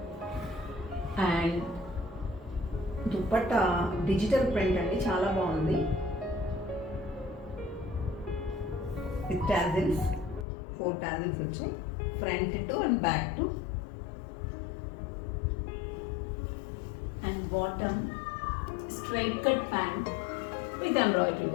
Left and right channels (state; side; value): drops out; right; at 10.5 s